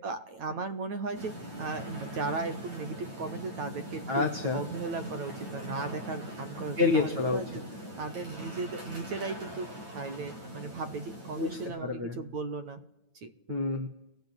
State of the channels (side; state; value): left; late; 9.1 ms